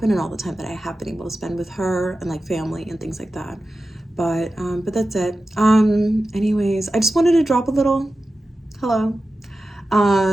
and all the time that I have been able to spend with her and like family and things like that. But that's it. Anyways, I just wanted to drop a little hello.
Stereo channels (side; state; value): both; normal; correlation 0.93